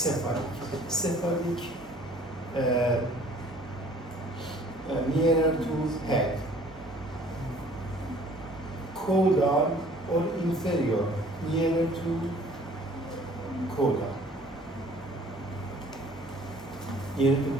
Cephalic, nearer to head. Caudal or inferior, nearer to caudal, near to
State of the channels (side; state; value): both; normal; correlation 0.53